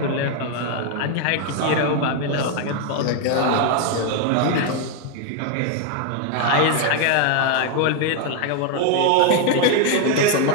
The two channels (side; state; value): both; different; correlation 0.01